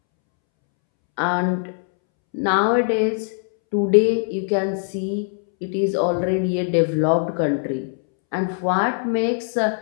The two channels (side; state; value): right; silent; 65 dB below the other